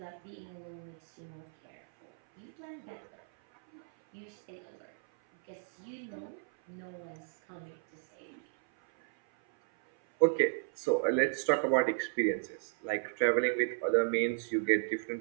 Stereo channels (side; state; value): left; silent; 55 dB below the other